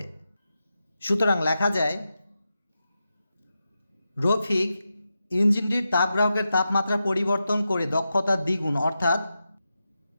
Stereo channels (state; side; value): inverted; both; correlation -0.90